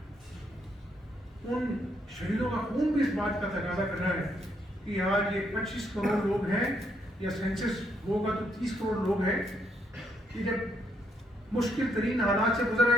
ان شہیدوں کا خون بھی اس بات کا تقاضا کر رہا ہے کہ آج یہ 25 کروڑ لوگ ہیں، یا سینسس ہوگا تو 30 کروڑ لوگ ہیں، کہ جب مشکل ترین حالات سے گزر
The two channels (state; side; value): normal; both; correlation 0.74